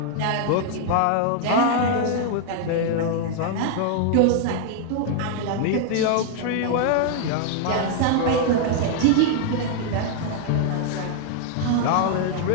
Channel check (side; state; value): both; different; correlation 0.00